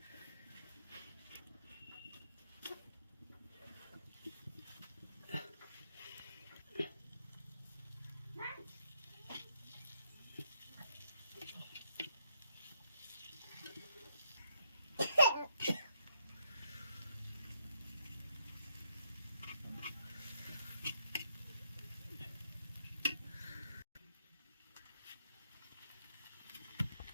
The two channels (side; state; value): both; inverted; correlation -0.75